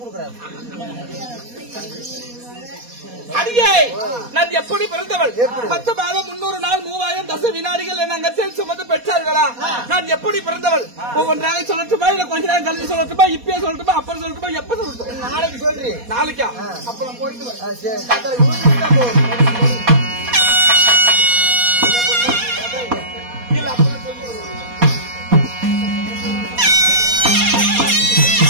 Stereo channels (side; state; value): left; late; 4.2 ms